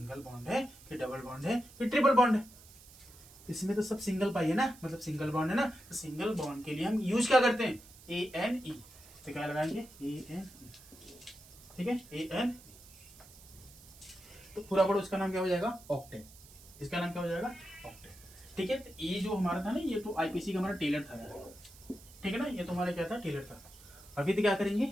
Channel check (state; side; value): noise; right; hiss, 21 dB below the sound